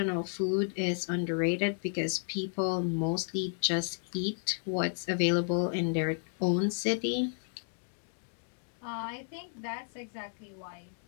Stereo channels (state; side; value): silent; right; digital silence